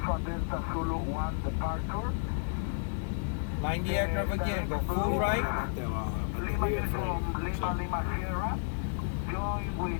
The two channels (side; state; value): right; silent; digital silence